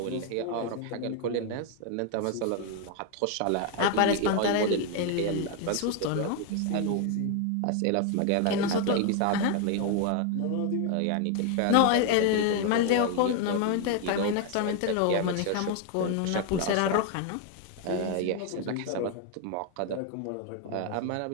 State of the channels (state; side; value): different; both; correlation 0.01